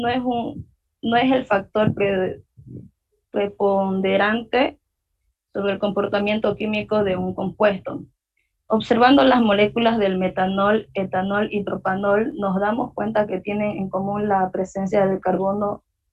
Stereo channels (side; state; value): both; identical; correlation 1.00